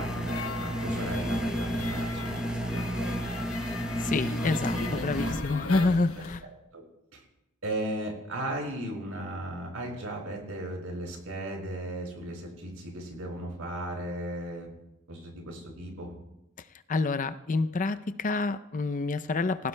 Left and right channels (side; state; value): both; normal; correlation 0.63